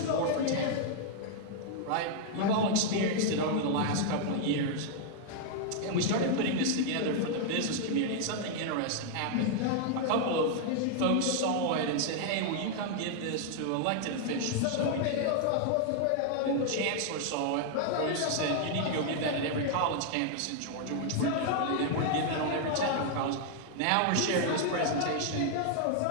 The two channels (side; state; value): both; different; correlation 0.00